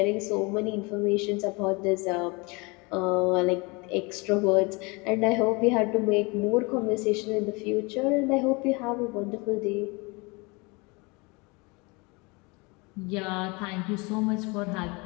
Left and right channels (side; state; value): right; quieter; 27.6 dB